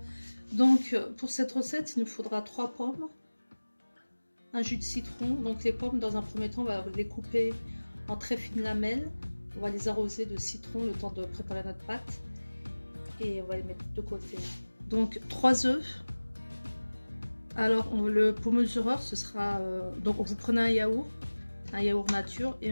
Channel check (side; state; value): both; inverted; correlation -1.00